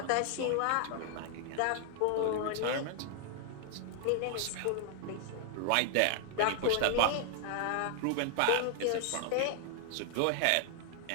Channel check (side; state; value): both; different; correlation 0.00